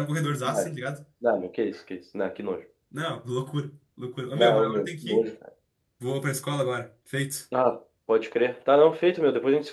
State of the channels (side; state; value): both; identical; correlation 1.00